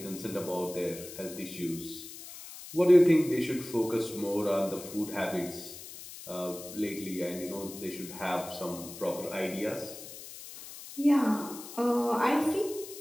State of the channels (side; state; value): left; noise; hiss, 13 dB below the sound